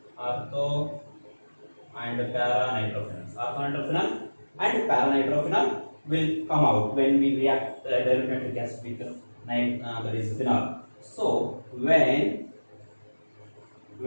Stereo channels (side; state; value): both; inverted; correlation -1.00